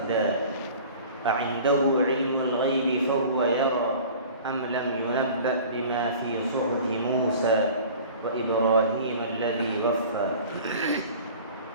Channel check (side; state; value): both; inverted; correlation -0.43